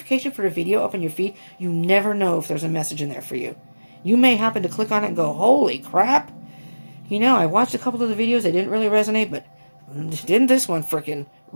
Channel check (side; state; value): both; inverted; correlation -1.00